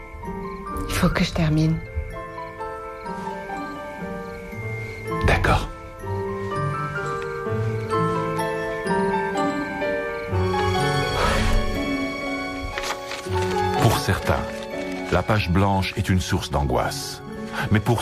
Il faut que je termine. D'accord. Pour certains, la page blanche est une source d'angoisse. Mais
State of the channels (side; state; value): both; identical; correlation 1.00